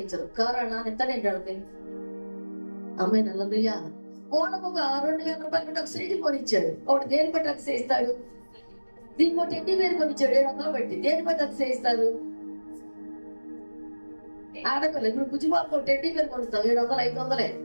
కారు నాన్న ఎంత నేను అమ్మాయి నల్లయ్యా ఓనకు ఒక 2,000 రూపాయలు ఒక సైకిల్ కొనిచ్చాడు. ఒకటి దేని బట్టి అతిశయిస్తాడు? దీనికి ఒక టెడ్డీ బేర్ కొనిచ్చాడు 700 బట్టి. దేని బట్టి అతిశయిస్తారు? ఆడపిల్ల ఇప్పుడు బుజ్జిబాబు టెడ్డీ బేర్ కొనిస్తాం 700 500.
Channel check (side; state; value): both; inverted; correlation -1.00